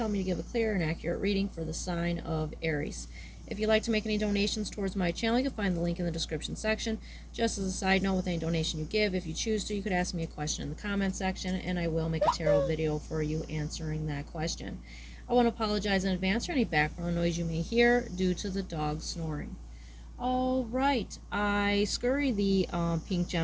me to give a clear and accurate reading for the sign of Aries. If you'd like to make any donations towards my channel, you can find the link in the description section. Just as a side note, with any donation you give, if you choose to, you could ask me a question in the comment section, and I will make a tarot video for you answering that question. I want to apologize in advance for any background noise you may hear due to the dog snoring. All right, I scurried the pink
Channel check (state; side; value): identical; both; correlation 1.00